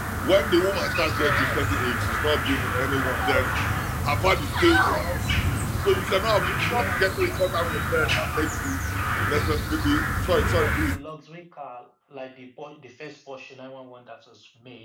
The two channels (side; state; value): both; identical; correlation 1.00